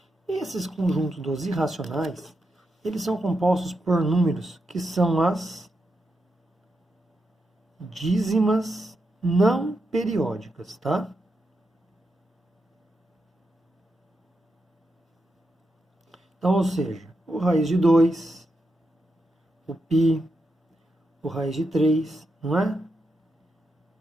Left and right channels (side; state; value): both; normal; correlation 0.85